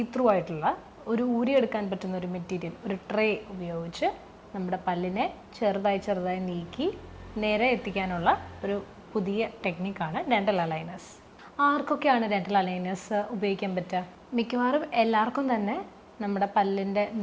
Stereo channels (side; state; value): both; identical; correlation 1.00